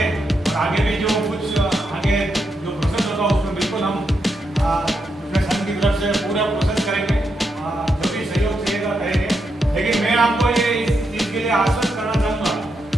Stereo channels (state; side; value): normal; both; correlation 0.83